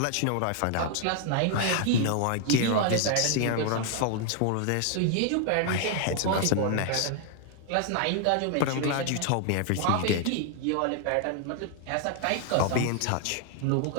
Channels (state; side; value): different; both; correlation 0.00